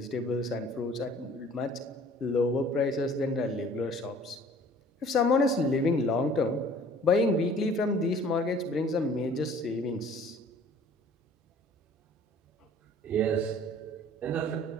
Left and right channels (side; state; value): both; normal; correlation 0.51